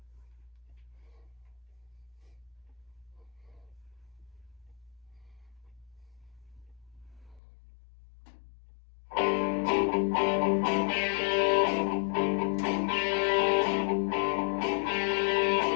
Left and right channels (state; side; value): drops out; right; at 7.4 s